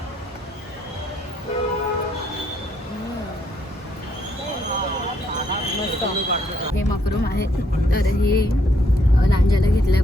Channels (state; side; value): normal; both; correlation 0.71